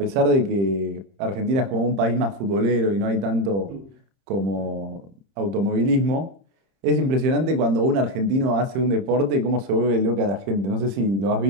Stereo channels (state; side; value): late; left; 30 ms